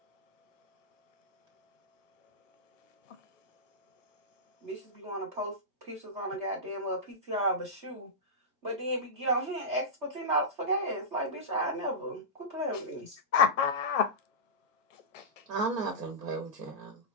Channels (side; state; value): both; normal; correlation -0.15